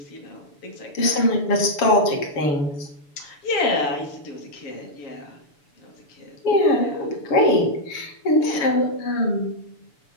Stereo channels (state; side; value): late; right; 6.9 ms